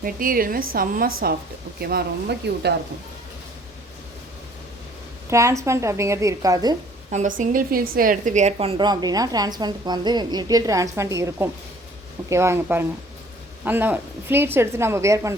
மெட்டீரியலுமே செம்ம சாஃப்ட். ஓகேவா, ரொம்ப க்யூட்டாக இருக்கும். டிரான்ஸ்பரண்ட் அப்படிங்கிறது இருக்காது. நம்ம சிங்கிள் ஃபீல்ஸில் எடுத்து வியர் பண்ணுறோம் அப்படின்னா டிரான்ஸ்பரண்ட்டுக்கு வந்து லிட்டில் டிரான்ஸ்பரண்ட் இருக்கும். ஓகேவா, இங்கே பாருங்கள், அந்த ஃப்ளீட்ஸ் எடுத்து நம்ம வியர்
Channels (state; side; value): normal; both; correlation 0.56